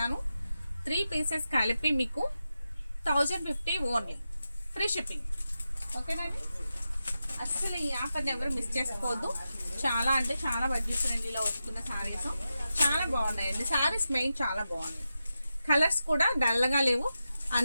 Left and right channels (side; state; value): both; inverted; correlation -0.90